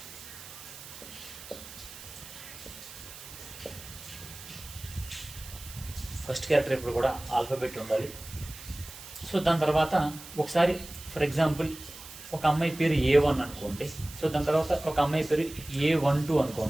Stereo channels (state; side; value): noise; right; hiss, 15 dB below the sound